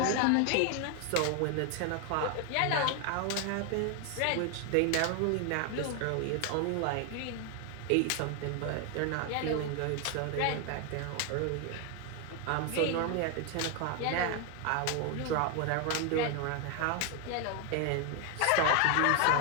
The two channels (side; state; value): both; different; correlation 0.01